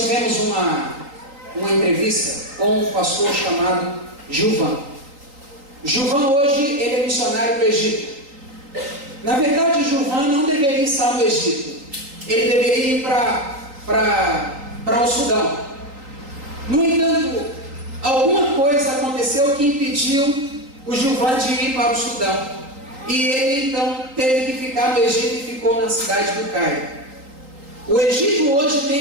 tivemos uma entrevista com um pastor chamado Gilvan. Gilvan hoje ele é missionário do Egito. Na verdade, Gilvan não deveria estar no Egito. Ele deveria ir para o Sudão. No entanto, alguma coisa aconteceu que impediu o Gilvan de ir para o Sudão. E ele então teve que ficar no Egito e ficou na cidade do Cairo. O Egito hoje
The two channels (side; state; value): left; late; 3.8 ms